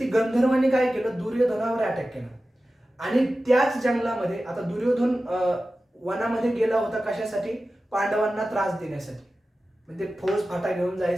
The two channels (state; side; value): normal; both; correlation 0.94